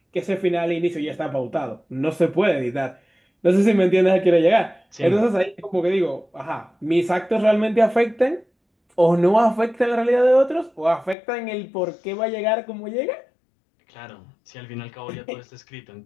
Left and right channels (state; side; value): drops out; right; at 11.2 s